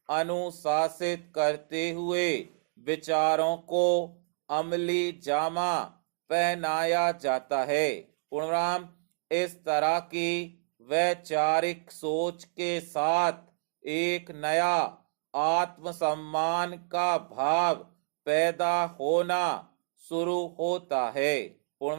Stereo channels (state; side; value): silent; left; digital silence